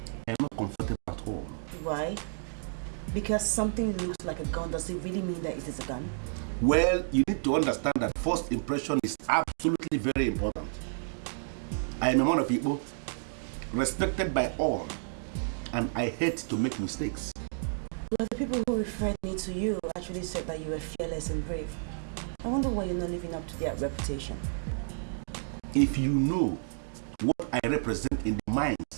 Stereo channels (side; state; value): left; silent; digital silence